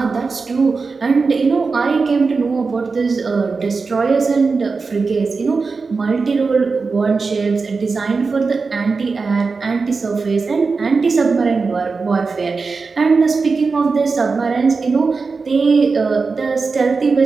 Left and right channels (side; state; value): left; quieter; 4.5 dB